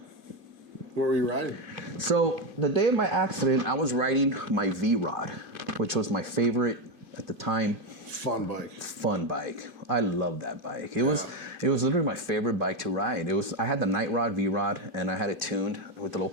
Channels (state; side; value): late; left; 2.2 ms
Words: Where were you riding? So the day of my accident, I was riding my V-Rod, which was my favorite at the time. Fun bike. I love that bike. It was literally my favorite bike to ride. I had the Night Rod V-Rod, and I had it tuned with a little